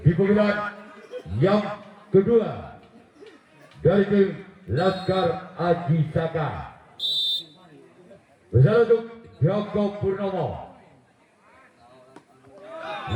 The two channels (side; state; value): both; identical; correlation 1.00